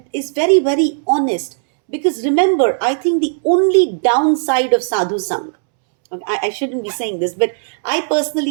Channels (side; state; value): left; silent; 68 dB below the other